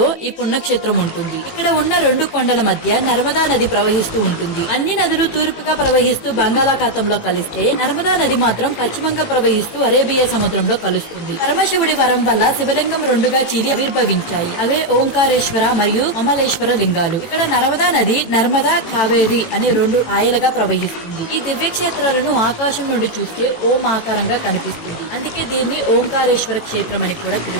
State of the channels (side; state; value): right; late; 18 ms